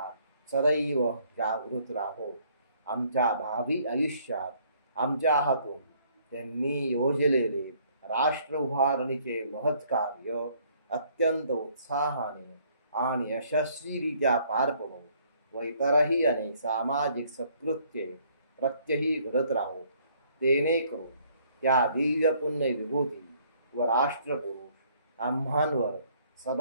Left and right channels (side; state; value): both; inverted; correlation -0.63